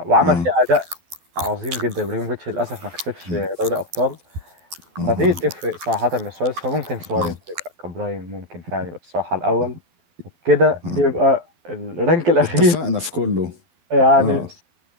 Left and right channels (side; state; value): left; late; 12 ms